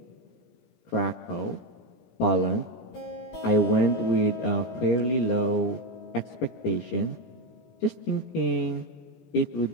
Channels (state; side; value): late; right; 17 ms